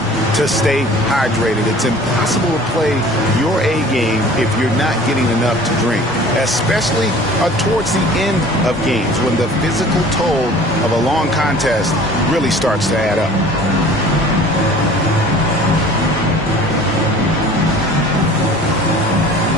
to stay hydrated. It's impossible to play your A game if you're not getting enough to drink, especially towards the end of games when the physical toll of a long contest really starts to add up.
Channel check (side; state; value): both; normal; correlation 0.46